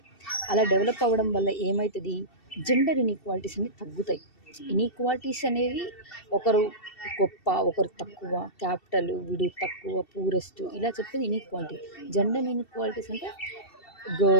అలా డెవలప్ అవ్వడం వల్ల ఏమవుతుంది, జెండర్ ఇన్ఈక్వాలిటీస్ అన్ని తగ్గుతాయి. ఇన్ఈక్వాలిటీస్ అనేవి ఒకరు గొప్ప, ఒకరు తక్కువ, క్యాపిటల్ వీడు తక్కువ, పూరెస్ట్ ఇలా చెప్పేది ఇన్ఈక్వాలిటీ. జెండర్ ఇన్ఈక్వాలిటీస్ అంటే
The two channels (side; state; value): right; late; 2.7 ms